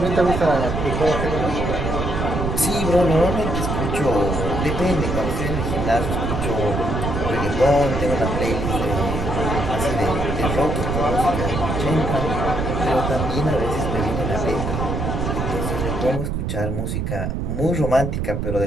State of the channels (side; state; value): right; noise; rumble, 2 dB below the sound